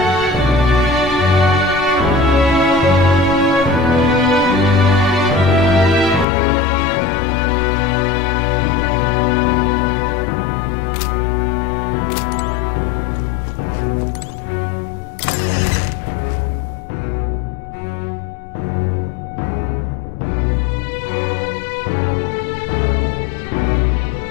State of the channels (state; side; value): drops out; right; at 6.2 s